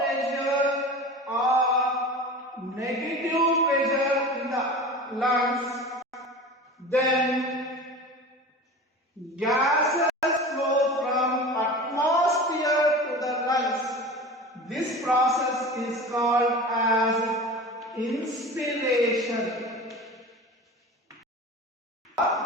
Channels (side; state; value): both; normal; correlation 0.34